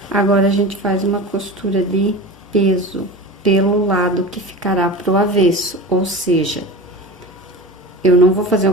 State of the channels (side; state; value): both; normal; correlation 0.31